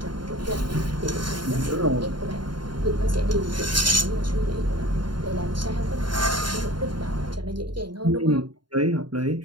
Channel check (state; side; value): late; left; 0.72 ms